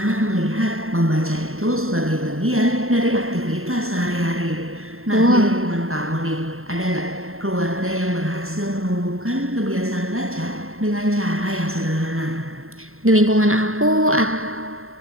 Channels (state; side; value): late; left; 0.62 ms